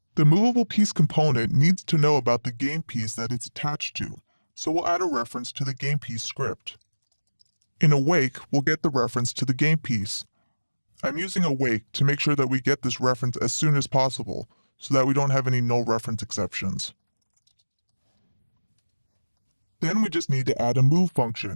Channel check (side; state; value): both; inverted; correlation -1.00